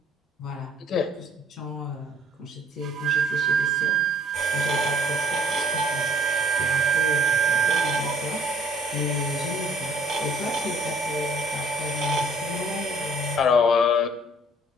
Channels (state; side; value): normal; both; correlation 0.59